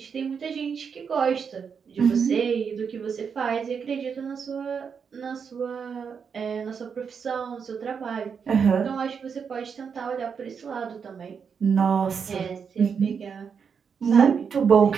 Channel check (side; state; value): left; quieter; 6.4 dB